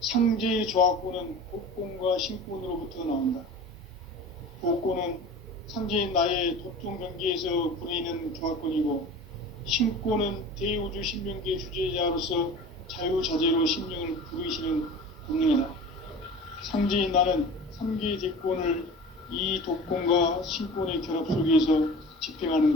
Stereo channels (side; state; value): both; normal; correlation 0.37